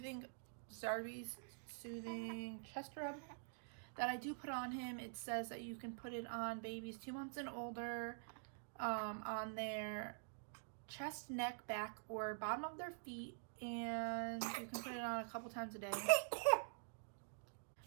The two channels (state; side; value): silent; left; digital silence